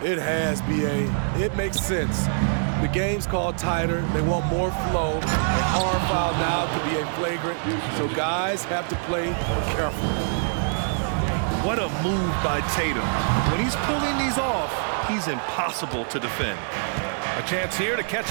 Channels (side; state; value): left; silent; digital silence